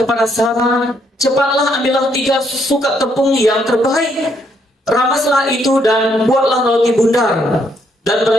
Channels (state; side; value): normal; both; correlation 0.72